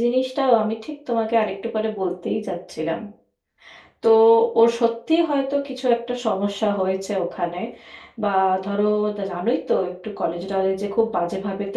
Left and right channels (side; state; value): both; identical; correlation 1.00